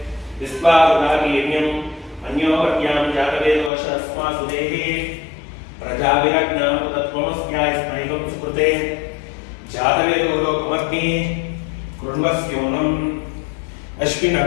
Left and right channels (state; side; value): drops out; right; at 3.7 s